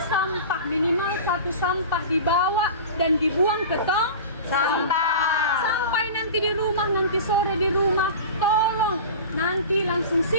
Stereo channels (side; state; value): both; inverted; correlation -0.33